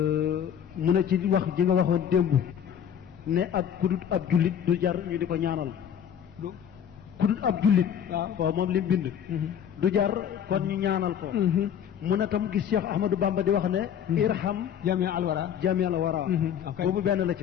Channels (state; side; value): quieter; right; 8.8 dB